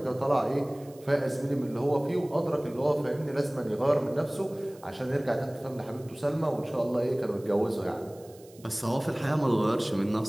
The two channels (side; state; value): right; noise; hiss, 25 dB below the sound